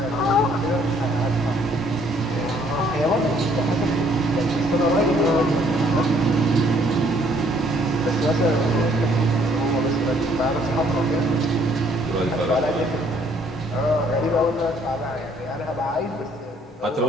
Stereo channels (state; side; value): normal; both; correlation 0.64